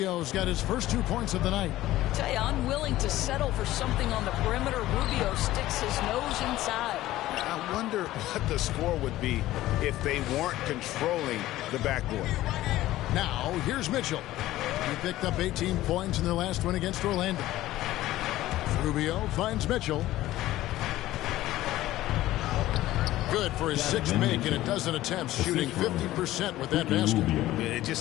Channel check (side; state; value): right; quieter; 15.5 dB